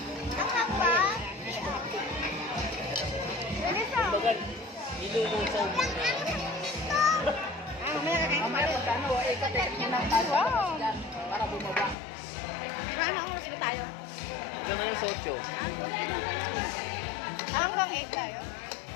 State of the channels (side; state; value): right; drops out; at 12.0 s